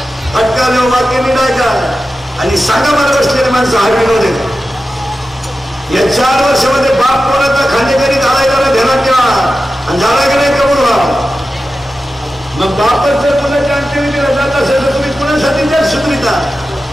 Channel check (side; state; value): both; normal; correlation 0.93